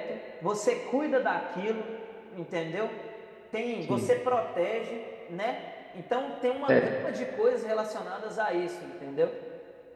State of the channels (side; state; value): both; identical; correlation 1.00